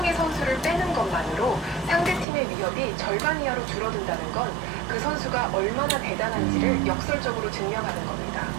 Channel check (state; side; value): drops out; left; at 2.2 s